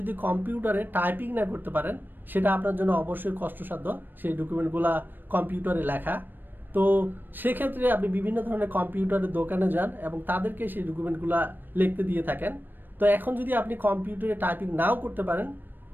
যদি কম্পিউটারে টাইপিং না করতে পারেন, সেটা আপনার জন্য অবশ্যই কষ্টসাধ্য, সেই ডকুমেন্টগুলো কম্পিউটারে লেখা। তো সেক্ষেত্রে আপনি বিভিন্ন ধরনের কম্পিউটারের দোকানে যান এবং তাদেরকে সেই ডকুমেন্টগুলো লিখতে দিয়ে থাকেন। তো এখন যদি আপনি কম্পিউটারে টাইপিং নাও করতে পারেন,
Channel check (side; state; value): left; late; 0.093 ms